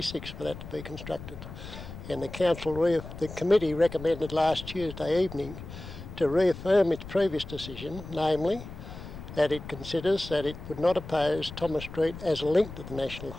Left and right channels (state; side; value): noise; left; rumble, 12 dB below the sound